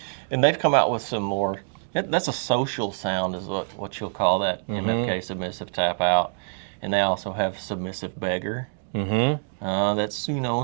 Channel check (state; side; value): silent; left; digital silence